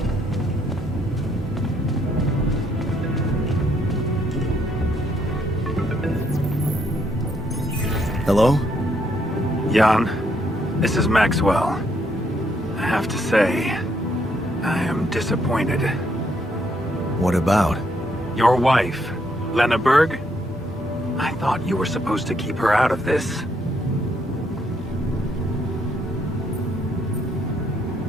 Hello? Jan, this is Maxwell. I have to say, I am disappointed. What about? Your wife, Lena Berg? I thought you were supposed to keep her out of this.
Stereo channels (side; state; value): both; normal; correlation 0.72